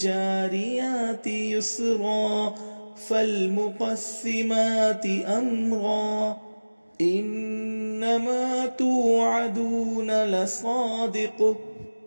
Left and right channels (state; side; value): inverted; both; correlation -1.00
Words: يسرا فالمقسمات أمرا إنما توعدون لصادق